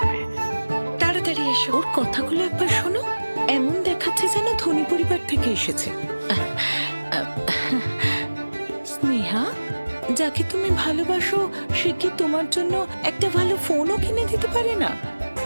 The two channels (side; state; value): both; inverted; correlation -1.00